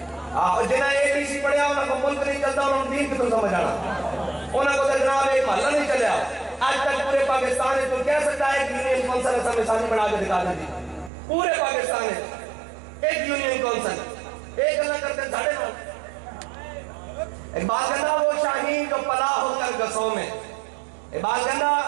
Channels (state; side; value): drops out; left; at 11.1 s